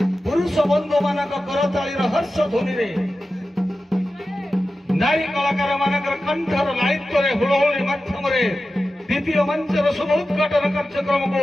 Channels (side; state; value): both; normal; correlation 0.93